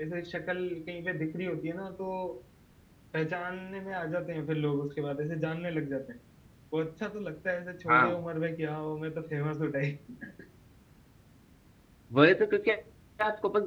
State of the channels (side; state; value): both; identical; correlation 1.00